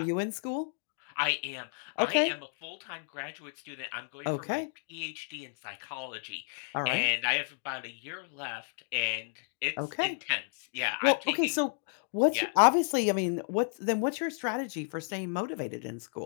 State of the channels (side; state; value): right; silent; digital silence